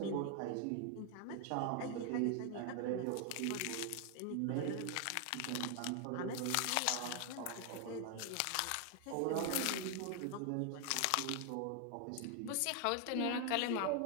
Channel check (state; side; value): different; both; correlation 0.00